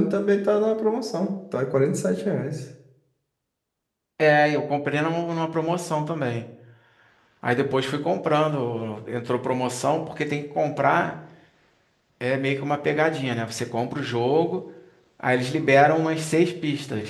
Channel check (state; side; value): identical; both; correlation 1.00